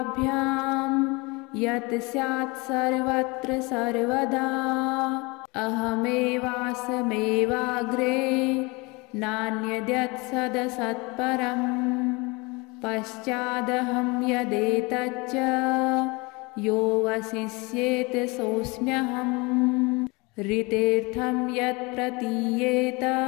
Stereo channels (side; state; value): right; quieter; 26.4 dB